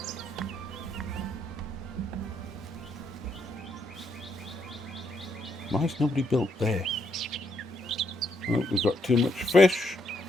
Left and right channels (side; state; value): both; normal; correlation 0.75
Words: Why is nobody built there? Well, we've got too much fish.